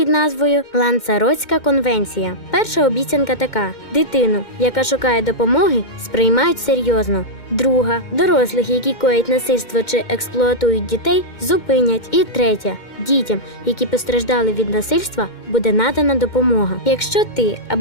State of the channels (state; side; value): late; right; 2.1 ms